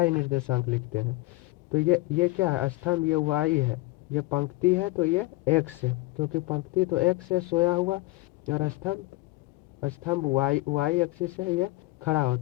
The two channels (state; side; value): quieter; right; 20.8 dB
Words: निर्देशांक लिखते हैं। तो ये क्या है? स्तंभ ये वाई है, ये पंक्ति है तो ये एक्स है, क्योंकि पंक्ति तो एक्स है सोया हुआ और स्तंभ स्तंभ वाई एक्सिस से ये खड़ा